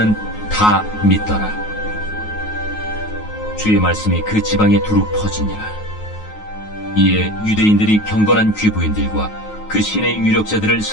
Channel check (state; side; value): late; right; 9.4 ms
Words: 다 믿더라. 주의 말씀이 그 지방에 두루 퍼지니라. 이에 유대인들이 경건한 귀부인들과 그 신의 유력자들을